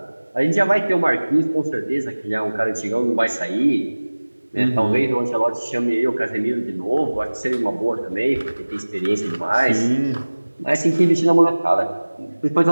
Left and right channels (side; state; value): both; inverted; correlation -1.00